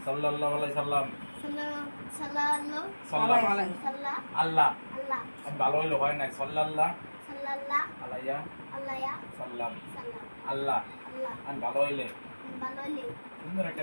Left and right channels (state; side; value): inverted; both; correlation -1.00